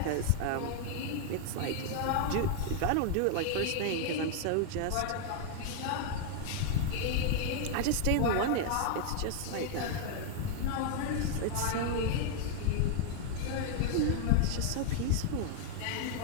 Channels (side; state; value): both; different; correlation 0.00